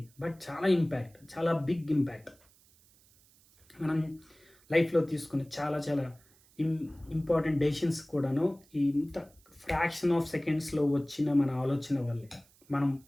బట్ చాలా ఇంపాక్ట్, చాలా బిగ్ ఇంపాక్ట్. మనం లైఫ్లో తీసుకునే చాలా చాలా ఇంపార్టెంట్ డెసిషన్స్ కూడాను ఇంత ఫ్రాక్షన్ ఆఫ్ సెకండ్స్లో వచ్చిన మన ఆలోచన వల్లే. మనం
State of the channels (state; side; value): noise; right; hiss, 29 dB below the sound